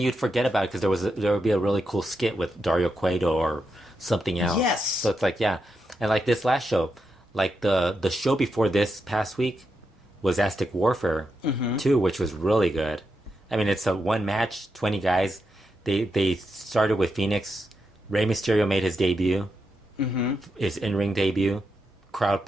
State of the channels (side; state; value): both; normal; correlation 0.85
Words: forget about it because there would be a really cool skit with Dario Cueto or something else. Yes. So it's like, and like this last show, like the show before this past week was Aztec Warfare 2, which was really good. I mean, it's a one match, 20 guys. They started with Phoenix. Rey Mysterio made his debut, his in-ring debut. Crowd